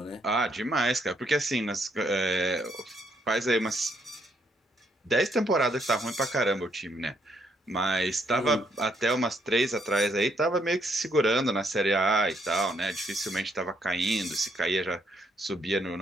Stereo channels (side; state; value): both; normal; correlation 0.72